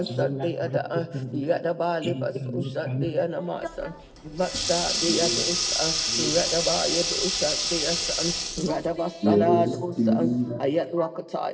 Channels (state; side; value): identical; both; correlation 1.00